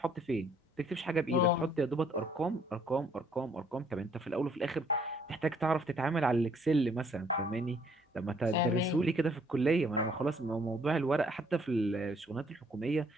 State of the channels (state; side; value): normal; both; correlation 0.64